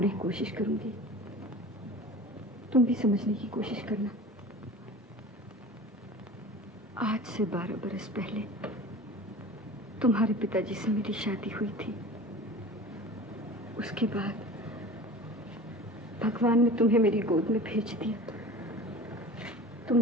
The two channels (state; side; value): normal; both; correlation 0.38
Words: कोशिश करूंगी। तुम भी समझने की कोशिश करना। आज से 12 बरस पहले तुम्हारे पिताजी से मेरी शादी हुई थी। उसके बाद भगवान ने तुम्हें मेरी गोद में भेज दिया। तुम